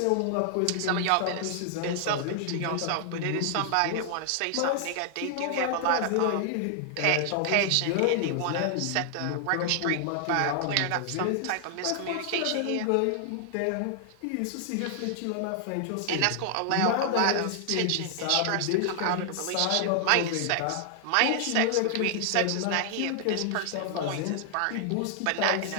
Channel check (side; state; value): both; different; correlation 0.00